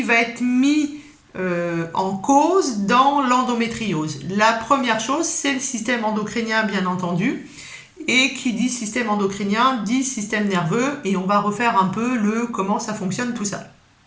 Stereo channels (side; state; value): both; identical; correlation 1.00